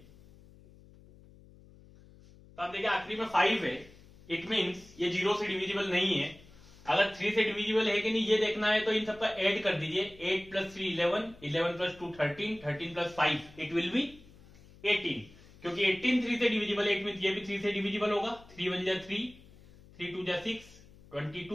तो आप देखिए आखिरी में 5 है, इट मीन्स ये 0 से डिविजिबल नहीं है। अगर 3 से डिविजिबल है कि नहीं ये देखना है तो इन सबका ऐड कर दीजिए, 8 + 3 11, 11 + 2 13, 13 + 5 इट विल बी 18, क्योंकि 18 3 से डिविजिबल है, इट मीन्स ये भी 3 से डिविजिबल होगा। 3 1 जा 3, 3 2 जा 6,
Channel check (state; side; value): noise; left; hum, 23 dB below the sound